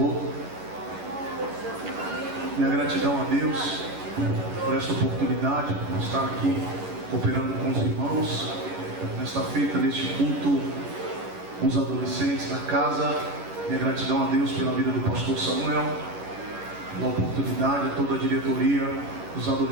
Minha gratidão a Deus por esta oportunidade, por estar aqui cooperando com os irmãos nesta feita, neste culto com os adolescentes da casa. Minha gratidão a Deus pela vida do pastor Samuel, pela oportunidade, a toda a diretoria dos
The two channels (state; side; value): late; left; 11 ms